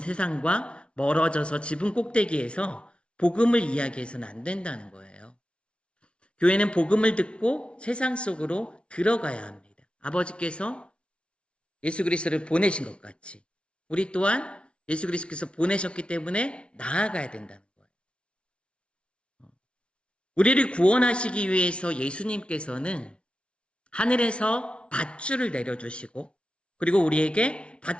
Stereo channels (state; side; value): late; right; 0.059 ms